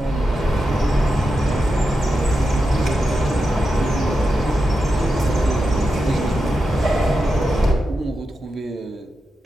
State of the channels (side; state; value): both; normal; correlation 0.89